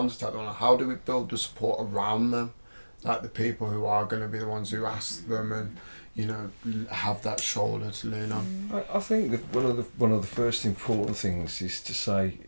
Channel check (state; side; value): inverted; both; correlation -1.00